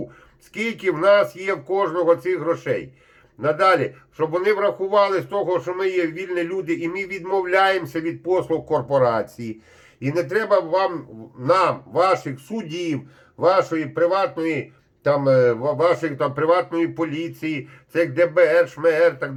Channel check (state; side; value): identical; both; correlation 1.00